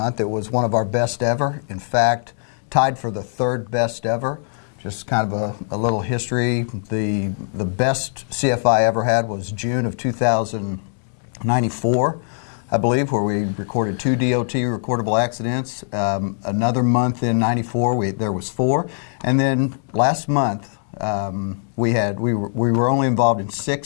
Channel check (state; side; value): silent; right; 65 dB below the other